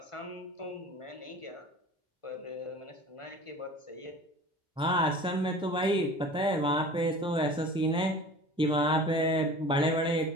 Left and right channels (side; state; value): both; normal; correlation 0.41